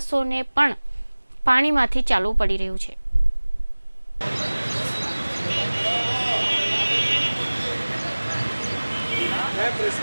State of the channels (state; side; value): inverted; both; correlation -1.00